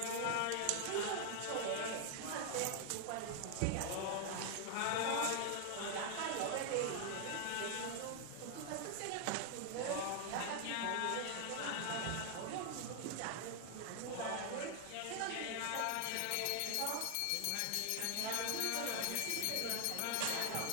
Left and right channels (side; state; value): both; different; correlation 0.00